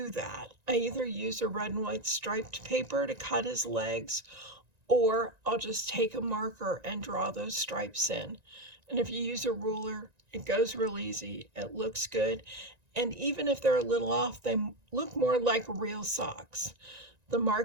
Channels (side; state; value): left; late; 1.9 ms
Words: that. I either use a red and white striped paper to cut his legs, or I'll just take a marker and draw those stripes in. And if you use a ruler, it goes real easy. It looks good. And even if they're a little off, they look more like real socks. The